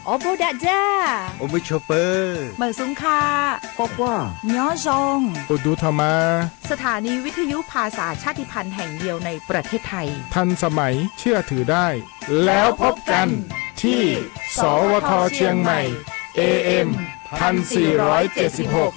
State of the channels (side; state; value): right; quieter; 29.0 dB